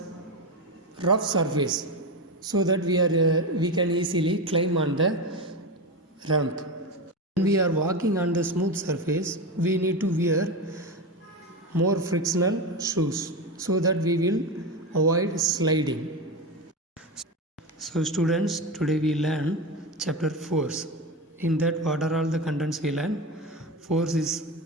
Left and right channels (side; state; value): both; normal; correlation 0.19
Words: rough surface, so that we can easily climb on the ramp. When we are walking on the smooth surface, we need to wear more frictional shoes so that we will avoid sliding. So students, today we learn chapter force. In that, what are all the contents we learn? Force is